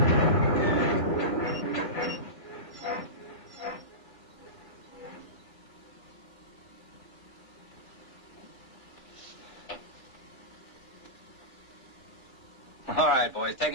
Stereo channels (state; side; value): late; right; 3.4 ms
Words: All right, boys, take